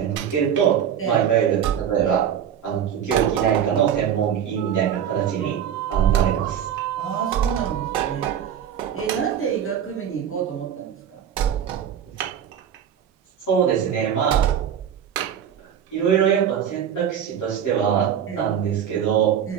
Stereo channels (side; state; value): left; quieter; 9.0 dB